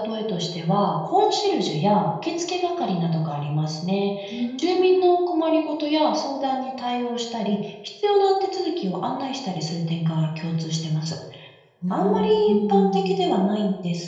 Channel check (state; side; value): identical; both; correlation 1.00